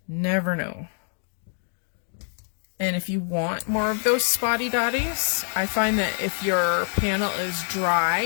Never know. And if you want more of those spotty dotties, I find that if your panel is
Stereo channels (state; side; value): silent; right; digital silence